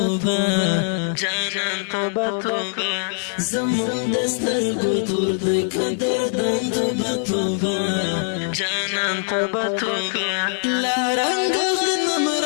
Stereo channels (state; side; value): silent; right; 59 dB below the other